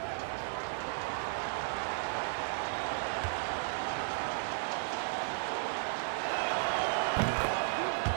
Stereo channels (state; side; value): silent; left; 55 dB below the other